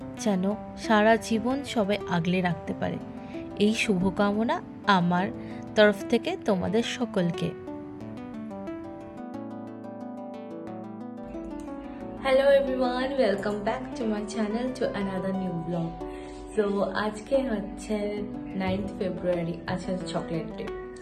যেন সারা জীবন সবাই আগলে রাখতে পারে, এই শুভকামনা আমার তরফ থেকে তোমাদের সকলকে। Hello everyone, welcome back to my channel to another new blog. So আজকে হচ্ছে 9th ফেব্রুয়ারি, আজকে চকলেট ডে।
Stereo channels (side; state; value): both; identical; correlation 1.00